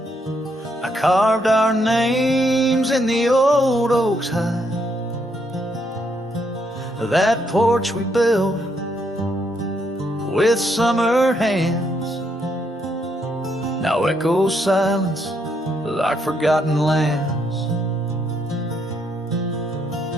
I carved our names in the old oak's hide. That porch we built with summer hands now echoes silence like forgotten lands.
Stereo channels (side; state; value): both; normal; correlation 0.75